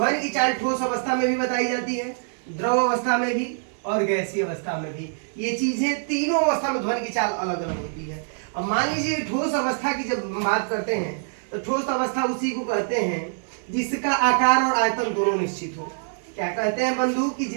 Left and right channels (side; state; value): left; silent; 62 dB below the other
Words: की चाल ठोस अवस्था में भी बताई जाती है, द्रव अवस्था में भी और गैसीय अवस्था में भी। ये चीजें तीनों अवस्था में ध्वनि की चाल अलग अलग होती है। अब मान लीजिए ठोस अवस्था की जब बात करते हैं तो ठोस अवस्था उसी को कहते हैं जिसका आकार और आयतन दोनों निश्चित हो। क्या कहते हैं बंधु? कि